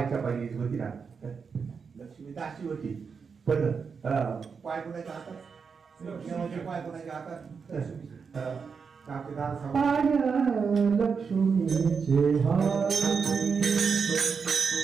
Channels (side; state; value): left; quieter; 5.7 dB